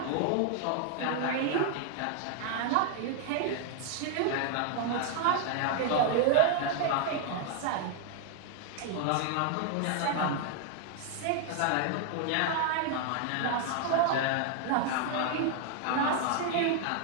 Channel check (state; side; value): different; both; correlation 0.00